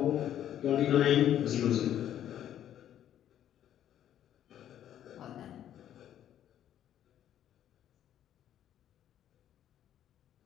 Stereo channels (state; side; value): quieter; right; 10.9 dB